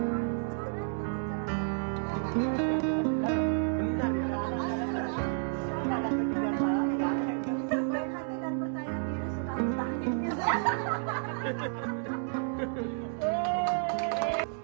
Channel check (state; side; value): silent; left; digital silence